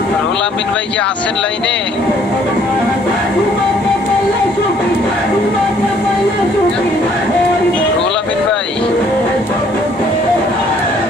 রুহুল আমিন ভাই কি আছেন লাইনে? রুহুল আমিন ভাই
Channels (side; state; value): both; normal; correlation 0.62